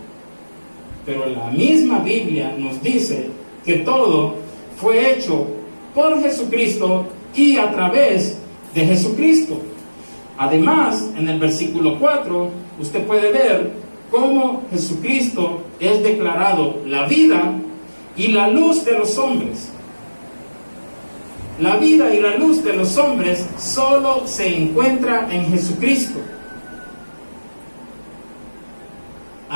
pero la misma Biblia nos dice que todo fue hecho por Jesucristo y a través de Jesucristo. Además, en el versículo 4, usted puede ver cómo Jesucristo es declarado la vida y la luz de los hombres. La vida y la luz de los hombres solo se encuentra en Jesucristo.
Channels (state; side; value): inverted; both; correlation -1.00